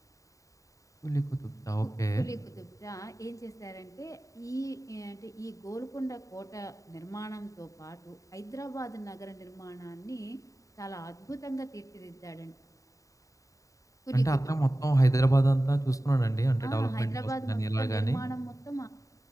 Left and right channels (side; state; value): right; late; 0.16 ms